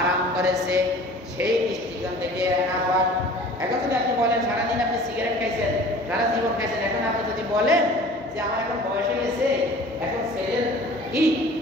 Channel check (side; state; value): both; normal; correlation 0.45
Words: করেছে, সেই দৃষ্টিকোণ থেকে নাপাক। এখন যদি আপনি বলেন সারাদিন আপনি সিগারেট খাইছেন, সারা জীবন খাইছেন, এখন আপনি যদি বলেন যে আমার এখন বয়স হয়ে গেছে, এখন